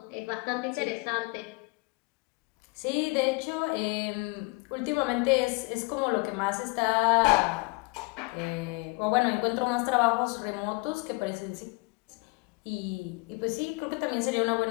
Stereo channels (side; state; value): right; quieter; 28.3 dB